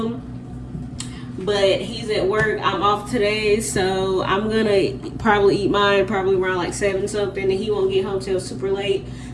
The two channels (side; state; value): both; identical; correlation 1.00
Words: But he's at work, I'm off today, so I'm gonna probably eat mine probably around like 7 something, and he won't get home till super late.